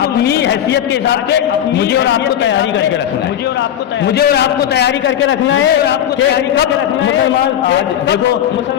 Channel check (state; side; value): quieter; right; 10.5 dB